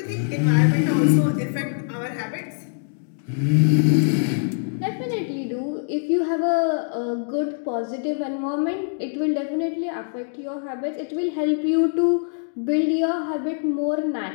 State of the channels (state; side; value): silent; right; digital silence